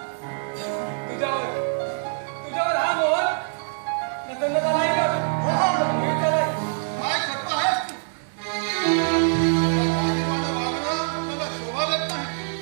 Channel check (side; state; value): left; silent; digital silence